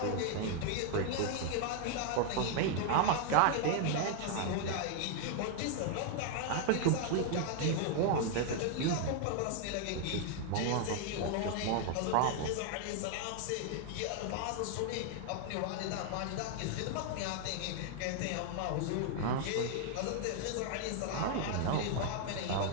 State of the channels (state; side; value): different; both; correlation 0.00